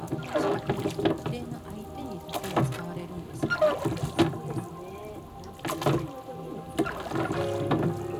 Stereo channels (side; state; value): both; identical; correlation 1.00